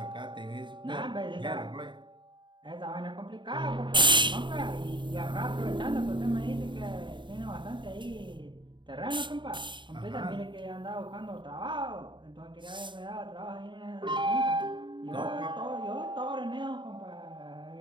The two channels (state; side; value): late; left; 0.23 ms